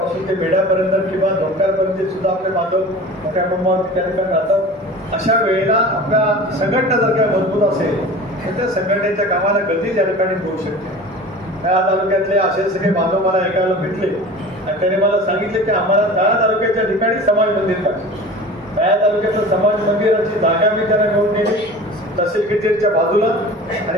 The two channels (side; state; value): both; normal; correlation 0.38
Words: ते बेड्यापर्यंत किंवा धोक्यापर्यंत सुद्धा आपले बांधव मोठ्या प्रमाणावरती त्या ठिकाणी राहतात. अशा वेळेला आपल्या संघटना जर काही मजबूत असेल तर त्या संघटनेच्या कामाला गती त्या ठिकाणी होऊ शकते. त्या तालुक्यातले असे सगळे बांधव मला ऐकायला भेटले आणि त्याने मला सांगितले की आम्हाला त्या तालुक्याच्या ठिकाणी समाज मंदिर पाहिजे. त्या तालुक्याचं समाज मंदिराची जागा मी त्यांना घेऊन दिली तहसील कचेरीच्या बाजूला आणि